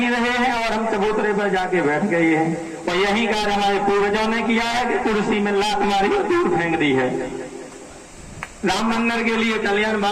रहे हैं और हम चबूतरे पर जाके बैठ गए हैं। और यही कार्य हमारे पूर्वजों ने किया है कि कुर्सी में लात मारी और दूर फेंक दी है। राम मंदिर के लिए कल्याण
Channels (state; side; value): identical; both; correlation 1.00